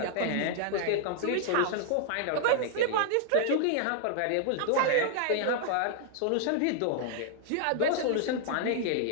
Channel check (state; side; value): different; both; correlation -0.01